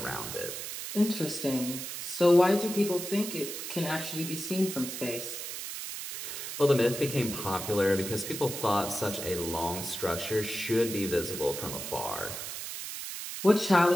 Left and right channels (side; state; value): right; noise; hiss, 7 dB below the sound